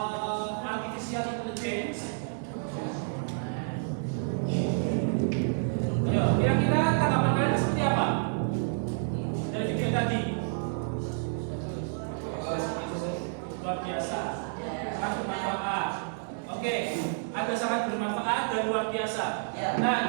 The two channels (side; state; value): left; silent; digital silence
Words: artificial intelligence? Ayo,